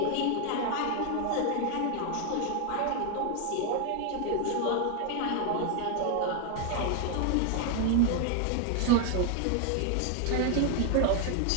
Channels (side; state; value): both; different; correlation 0.00